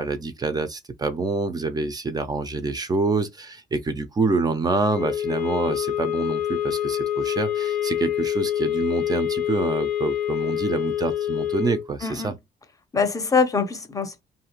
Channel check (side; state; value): both; normal; correlation 0.51